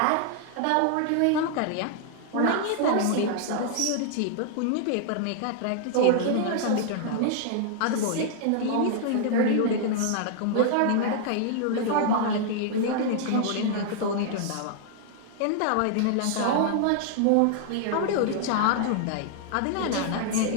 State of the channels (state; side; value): different; both; correlation -0.01